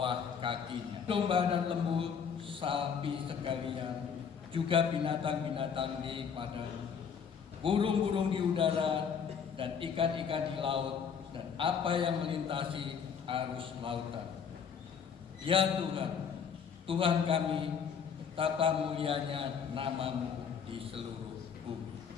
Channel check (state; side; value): quieter; right; 6.9 dB